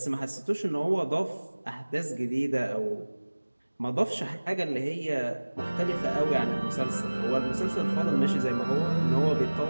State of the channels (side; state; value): both; inverted; correlation -1.00